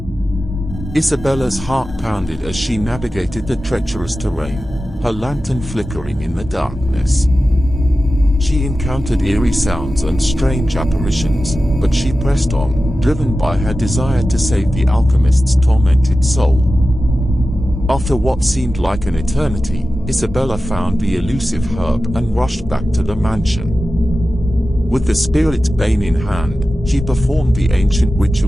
Isabella's heart pounded as she navigated the treacherous terrain, her lantern flickering in the darkness. She encountered eerie sounds and strange apparitions, but she pressed on, driven by her desire to save the alchemist's tormented soul. After what seemed like an eternity, Isabella found the elusive herb and rushed back to the mansion. With the spirit's bane in hand, she performed the ancient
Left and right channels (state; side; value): normal; both; correlation 0.94